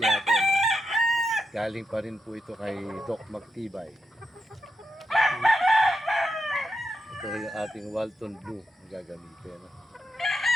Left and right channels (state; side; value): normal; both; correlation 0.86